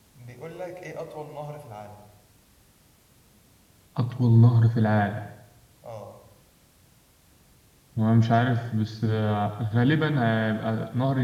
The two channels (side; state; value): both; identical; correlation 1.00